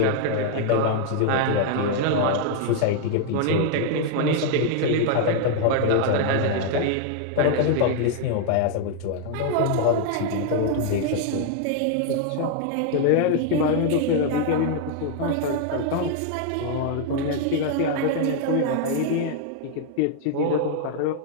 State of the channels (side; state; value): both; different; correlation 0.00